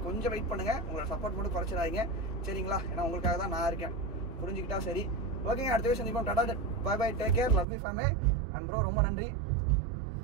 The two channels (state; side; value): drops out; left; at 7.7 s